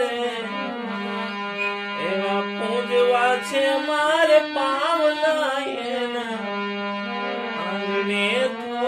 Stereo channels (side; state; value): both; identical; correlation 1.00